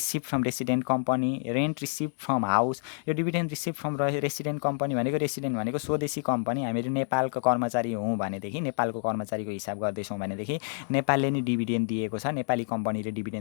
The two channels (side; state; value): right; silent; digital silence